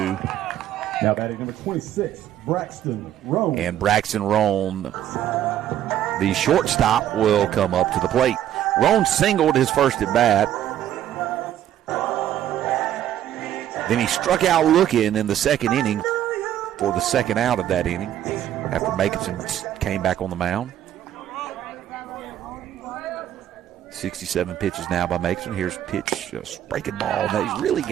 Now batting number 26, Braxton Roan. And Braxton Roan, the shortstop, will come up to the plate. Roan singled his first at bat. Then he struck out looking in the 2nd inning for the 2nd out of that inning after Makerson came back on the mound. 67 pitches now by Makerson. Here's pitch, breaking ball. Now he's really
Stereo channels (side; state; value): left; quieter; 11.4 dB